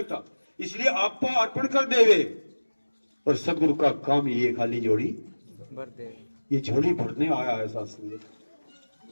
इसलिए आपा अर्पण कर देवे। और सदगुरु का काम ये खाली झोली भर दे, ये झोली भरने आया है शास्त्र।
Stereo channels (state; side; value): inverted; both; correlation -1.00